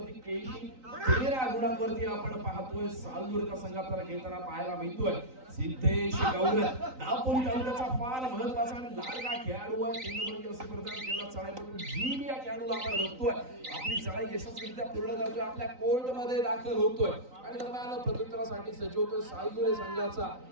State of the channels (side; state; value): left; late; 3.9 ms